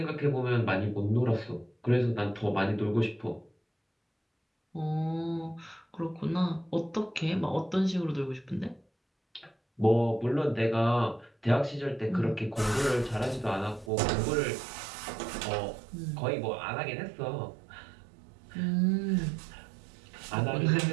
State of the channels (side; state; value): left; drops out; at 13.9 s